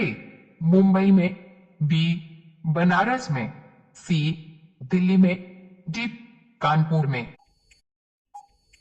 मुंबई में, बी बनारस में, सी दिल्ली में, डी कानपुर में।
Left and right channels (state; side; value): identical; both; correlation 1.00